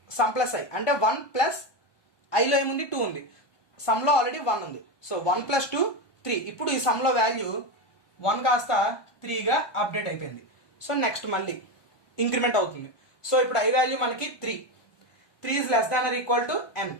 I అంటే 1 ప్లస్ ఐలో ఏముంది 2 ఉంది, సమ్లో ఆల్రెడీ 1 ఉంది. So 1 plus 2 3. ఇప్పుడు ఈ సమ్లో వాల్యూ 1 కాస్త 3గా అప్డేట్ అయిపోయింది. సో నెక్స్ట్ మళ్ళీ ఇంక్రిమెంట్ అవుతుంది. సో ఇప్పుడు ఐ వాల్యూ మనకి 3 is less than or equal to n,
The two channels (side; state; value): right; late; 1.2 ms